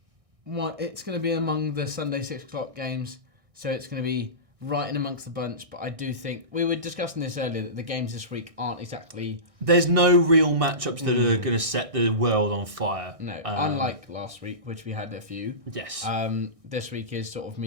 going to be among the Sunday 6:00 games, so it's going to be right in amongst the bunch. But I do think we were discussing this earlier that the games this week aren't exactly. There's no real matchups that are going to set the world on fire. No, unlike last week, which we had a few. Yes. This week is sort of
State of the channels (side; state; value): left; late; 1.6 ms